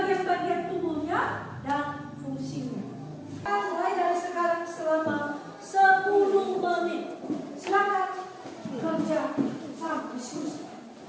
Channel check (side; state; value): both; identical; correlation 1.00